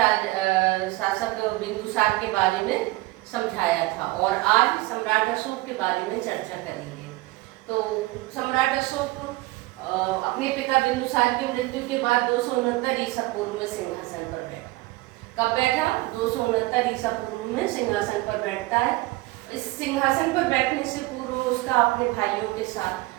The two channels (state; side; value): quieter; left; 20.2 dB